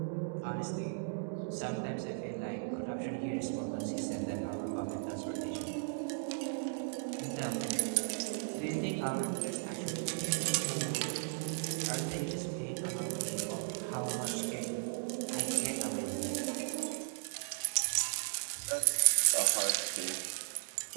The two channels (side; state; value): left; silent; digital silence